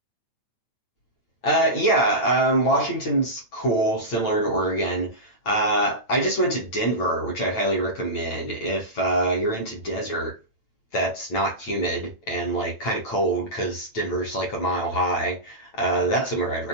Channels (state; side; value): late; right; 9.0 ms